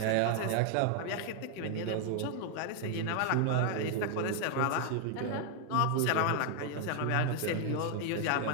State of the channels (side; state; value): both; different; correlation 0.00